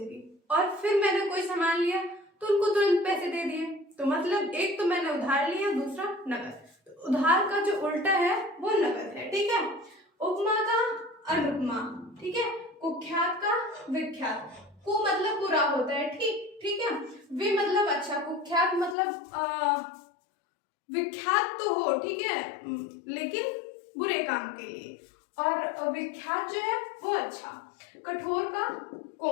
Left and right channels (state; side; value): drops out; right; at 18.9 s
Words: और फिर मैंने कोई सामान लिया तो उनको तुरंत पैसे दे दिए, तो मतलब एक तो मैंने उधार लिया, दूसरा नकद। तो उधार का जो उल्टा है वो नकद है, ठीक है। उपमा का अनुपमा, ठीक है। कुख्यात का विख्यात, कु मतलब बुरा होता है, ठीक है। वि मतलब अच्छा, कुख्यात मतलब विख्यात तो हो, ठीक है, लेकिन बुरे काम के लिए। और विख्यात जो है वो अच्छा। कठोर का